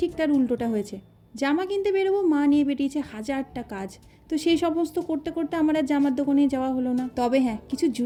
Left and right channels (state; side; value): identical; both; correlation 1.00